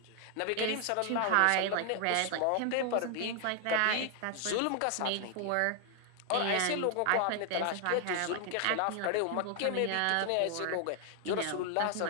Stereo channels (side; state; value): both; different; correlation 0.00